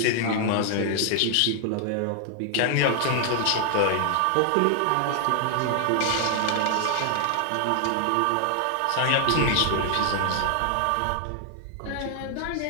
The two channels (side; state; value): both; different; correlation 0.00